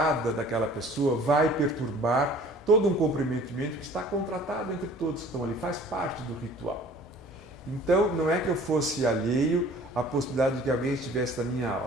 daquela pessoa vai perturbar todo um comprometimento que está contratado entre todos que estão ali, faz parte do ritual. Então, não é que eu fosse alheio à possibilidade de que alguém estivesse na minha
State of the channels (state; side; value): normal; both; correlation 0.50